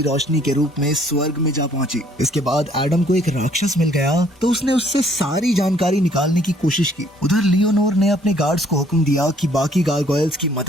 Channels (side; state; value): both; normal; correlation 0.61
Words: रोशनी के रूप में स्वर्ग में जा पहुंची। इसके बाद एडम को एक राक्षस मिल गया तो उसने उससे सारी जानकारी निकालने की कोशिश की। उधर लियोनोर ने अपने गार्ड्स को हुक्म दिया कि बाकी गारगोयल्स की